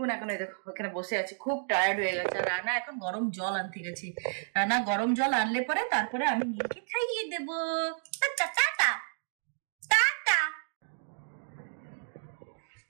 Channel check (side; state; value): left; silent; digital silence